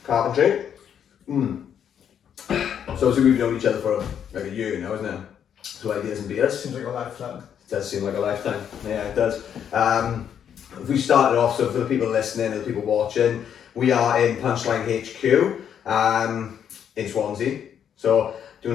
carpentry. So we've known each other for like a year now, isn't it? So ideas and beers. Seems like a lifetime. It does seem like a lifetime. Yeah, it does. We started off, so for the people listening and the people watching, we are in Punchline HQ in Swansea. So do you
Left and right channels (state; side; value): quieter; right; 8.7 dB